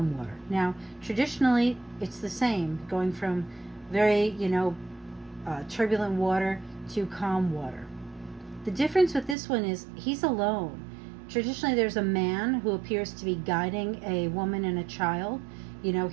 water. Now, traditionally, it's the same, going from very, turbulent water to calm water. The difference with this one is he's alone. Traditionally, there's a man who appears to be guiding a woman and a child.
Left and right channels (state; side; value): drops out; left; at 9.3 s